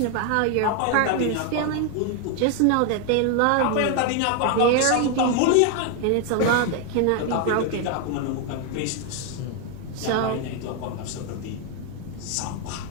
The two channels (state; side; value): different; both; correlation 0.01